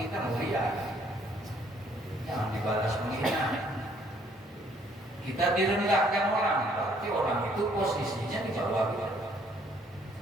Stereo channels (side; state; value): both; normal; correlation 0.64